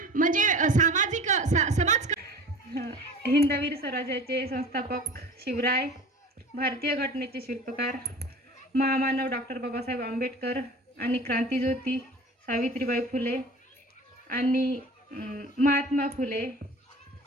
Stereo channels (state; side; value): normal; both; correlation 0.40